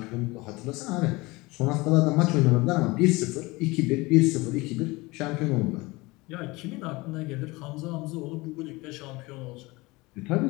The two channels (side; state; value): right; quieter; 22.9 dB